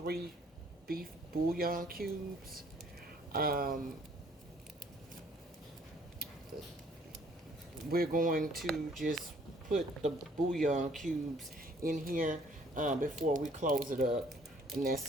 beef bouillon cubes. Um, we're going to just put the bouillon cubes in here before we close it up, and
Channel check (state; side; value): normal; both; correlation 0.60